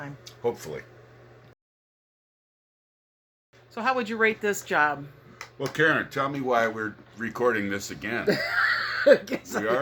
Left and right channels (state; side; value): identical; both; correlation 1.00